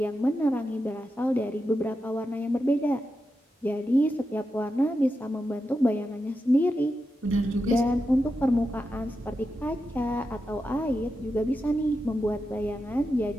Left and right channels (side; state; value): both; normal; correlation 0.88